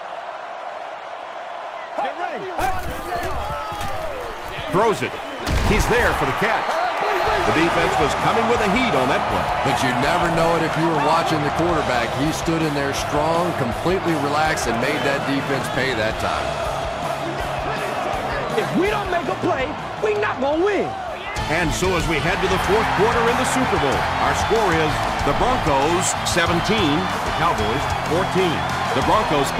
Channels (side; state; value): both; identical; correlation 1.00